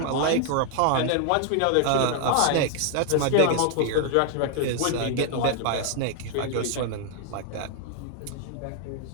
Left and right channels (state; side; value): different; both; correlation 0.00